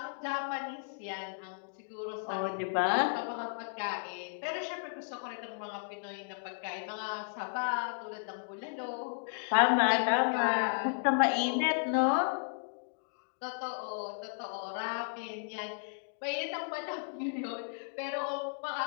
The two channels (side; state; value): right; silent; digital silence